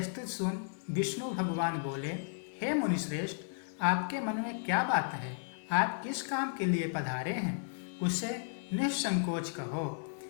स्तुति सुन विष्णु भगवान बोले, हे मुनिश्रेष्ठ, आपके मन में क्या बात है? आप किस काम के लिए पधारे हैं, उसे निसंकोच कहो।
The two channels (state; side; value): silent; right; digital silence